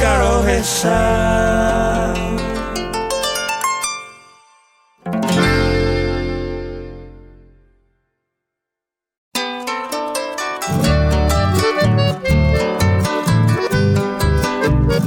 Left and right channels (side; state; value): both; identical; correlation 1.00